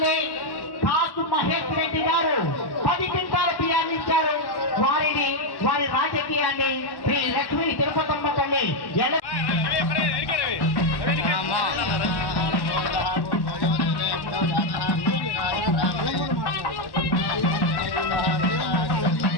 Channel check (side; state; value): right; late; 1.1 ms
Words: కాసు మహేష్ రెడ్డి గారు 10 క్వింటాల బియ్యాన్ని ఇచ్చారు. వారి రాజకీయాన్ని శ్రీ లక్ష్మీ తిరుపతమ్మ తల్లి